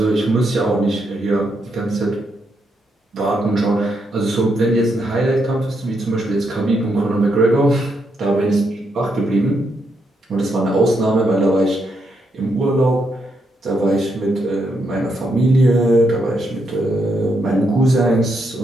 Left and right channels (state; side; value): normal; both; correlation 0.79